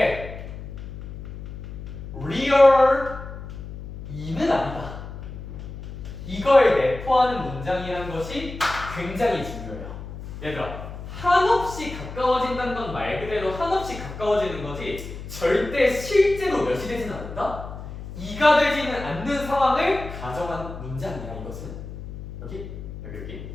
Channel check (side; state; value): left; noise; hum, 11 dB below the sound